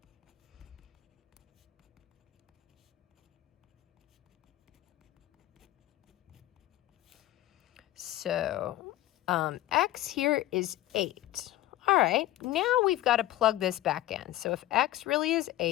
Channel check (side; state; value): right; quieter; 15.2 dB